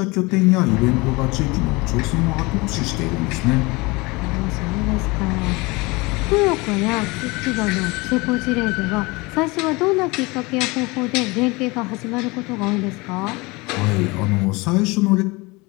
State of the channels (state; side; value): quieter; right; 24.5 dB